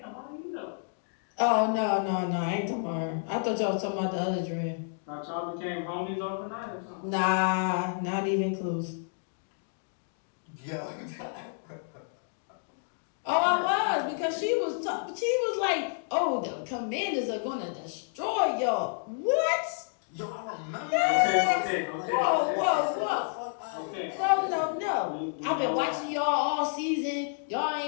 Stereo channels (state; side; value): silent; right; digital silence